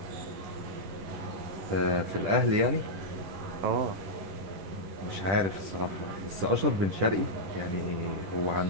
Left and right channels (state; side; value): late; left; 10 ms